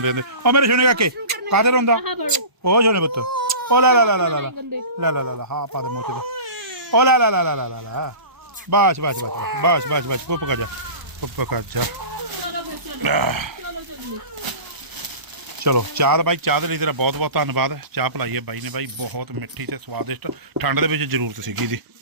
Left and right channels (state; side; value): late; left; 1.0 ms